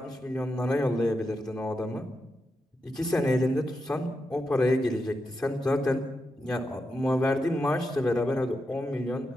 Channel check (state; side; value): normal; both; correlation 0.87